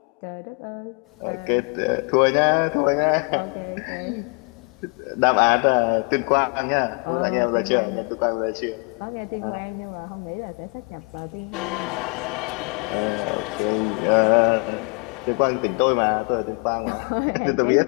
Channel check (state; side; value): quieter; right; 34.4 dB